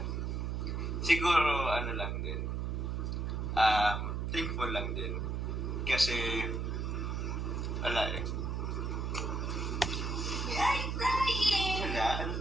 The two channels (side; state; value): right; noise; hum, 1 dB below the sound